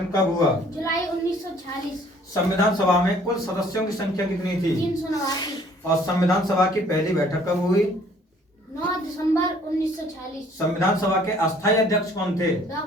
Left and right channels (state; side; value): normal; both; correlation 0.58